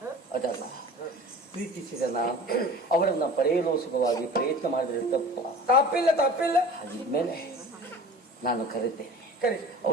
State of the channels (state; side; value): normal; both; correlation 0.40